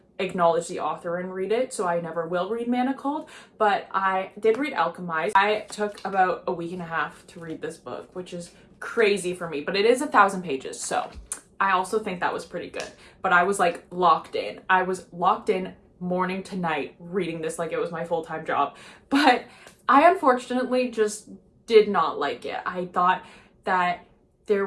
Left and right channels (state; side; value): identical; both; correlation 1.00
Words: acknowledge the author and read it, so I never will read Manacled, but I did read Alchemized. I took about a week and a half to read this book, which is crazy for me, but it is 1,000 pages, so I also think that was pretty good. But I was like locked in. I was locked in morning to night reading this like it was my full-time job, but I unfortunately just did not like it. I thought that there